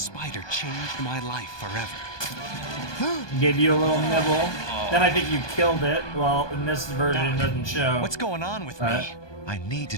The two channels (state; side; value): late; right; 1.2 ms